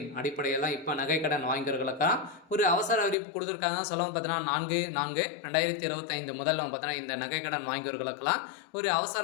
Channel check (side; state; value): right; drops out; at 3.2 s